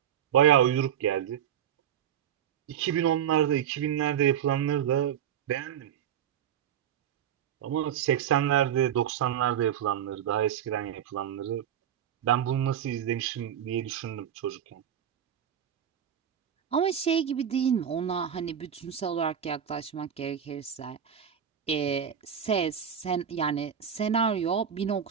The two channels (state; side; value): quieter; left; 9.3 dB